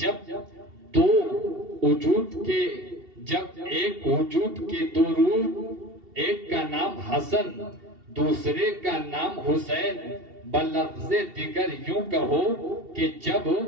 جب دو وجود کے، جب ایک وجود کے دو روح، ایک کا نام حسن دوسرے کا نام حسین، بلفظ دیگر یوں کہو کہ جب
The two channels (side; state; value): left; late; 2.7 ms